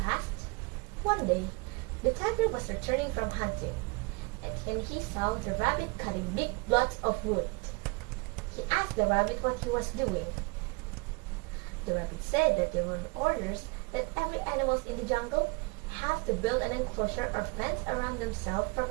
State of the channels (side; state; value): left; quieter; 29.2 dB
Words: passed. One day, the tiger was returning from hunting, and he saw the rabbit cutting big blocks of wood. He asked the rabbit what he was doing. The rabbit said that there were orders that every animal in the jungle have to build an enclosure or fence around themselves for